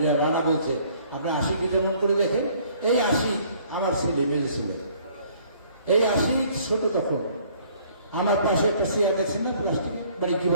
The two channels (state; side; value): inverted; both; correlation -0.59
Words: রানা বলছে আপনি আশিকে যেমন করে দেখেন, এই আশি আমার ছেলে, মেয়ে ছেলে, এই আশি ছোট তখন আমার পাশে একটা চেয়ার দেখছেন না প্লাস্টিক, মানে কি